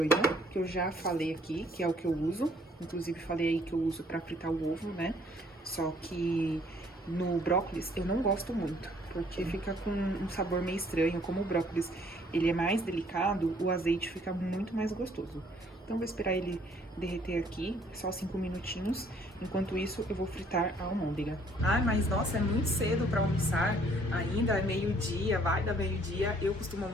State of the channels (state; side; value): normal; both; correlation 0.62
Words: que eu já falei aqui, que é o que eu uso. Inclusive, falei aí que eu uso pra fritar o ovo, né? Só que no brócolis eu não gosto muito, porque fica com um sabor meio estranho. Como o brócolis ele é mais delicado, o azeite fica muito mais gostoso. Então, vou esperar ele derreter aqui, só 5 minutinhos. Enquanto isso, eu vou fritar a almôndega. Ai, mas nossa, é muito cedo pra almoçar. Ainda é meio-dia, vai dar meio-dia. Eu costumo